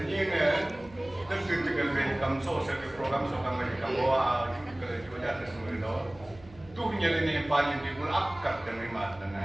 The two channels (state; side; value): noise; right; hum, 22 dB below the sound